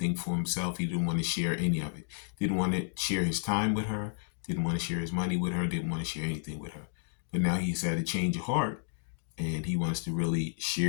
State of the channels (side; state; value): right; silent; digital silence